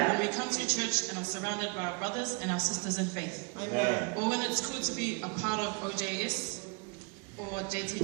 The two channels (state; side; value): quieter; left; 31.9 dB